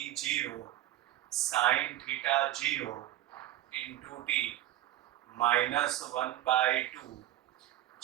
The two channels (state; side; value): quieter; left; 14.0 dB